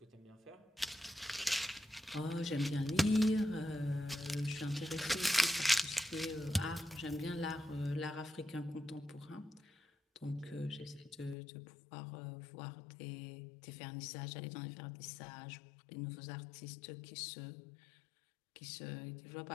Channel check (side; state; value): right; drops out; at 11.4 s